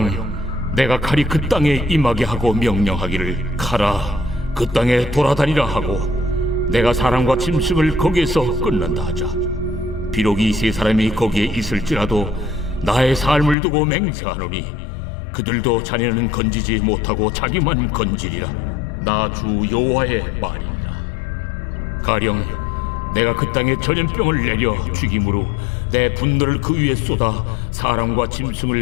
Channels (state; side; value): drops out; right; at 13.6 s